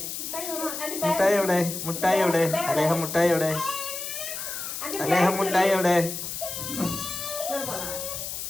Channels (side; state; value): left; noise; hiss, 6 dB below the sound